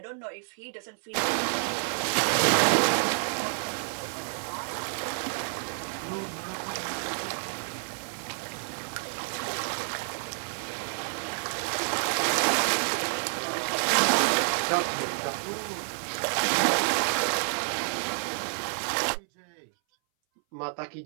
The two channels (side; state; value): left; silent; 59 dB below the other